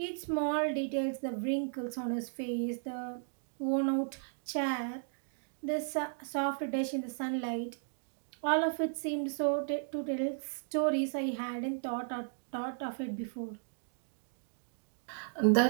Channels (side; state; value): left; silent; digital silence